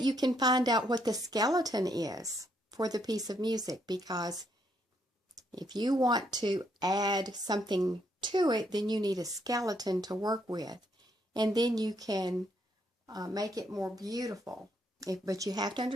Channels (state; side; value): normal; both; correlation 0.73